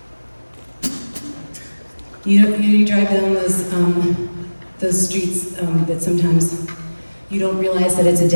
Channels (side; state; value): both; inverted; correlation -1.00